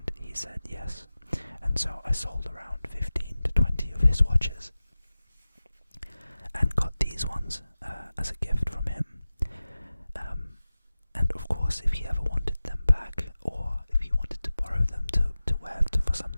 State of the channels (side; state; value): both; inverted; correlation -0.96